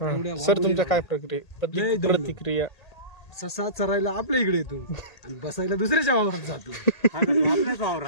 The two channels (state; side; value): late; right; 1.8 ms